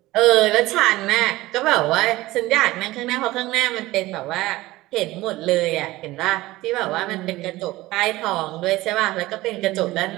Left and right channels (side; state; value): left; quieter; 18.4 dB